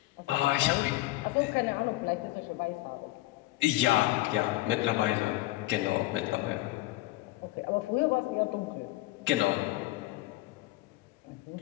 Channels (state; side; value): quieter; right; 18.5 dB